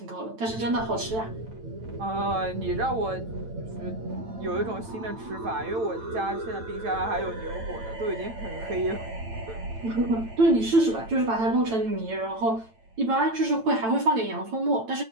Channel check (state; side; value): late; left; 9.0 ms